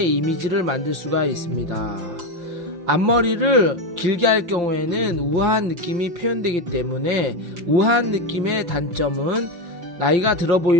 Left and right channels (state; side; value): late; left; 5.8 ms